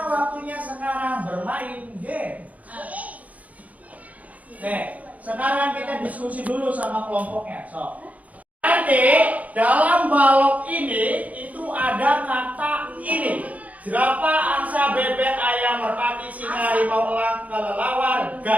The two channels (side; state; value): left; late; 0.072 ms